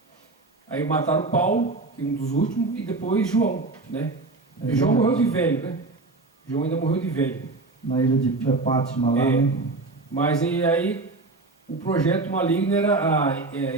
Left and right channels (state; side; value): quieter; left; 3.4 dB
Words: Aí mataram Paulo, que é um dos últimos, e depois João, né? João morreu de velho, né? João ainda morreu de velho. Na ilha de Pátima lá, né? Mas aí o projeto maligno era